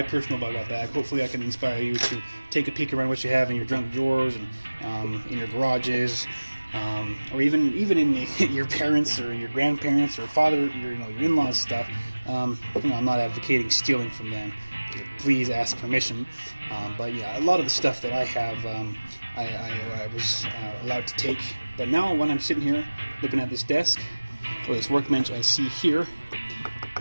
personal Bugout bag. Hopefully I can inspire you to take a peek around what you have in your junk drawers and in your garages, or even in your parents or your grandparents or father, your in-laws stuff. I'm not advocating stealing from them. Please ask permission. But yeah, a lot of the stuff that I have, I was allowed to take. But now when I'm sitting here looking at this desk or this workbench, I see here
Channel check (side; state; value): both; inverted; correlation -1.00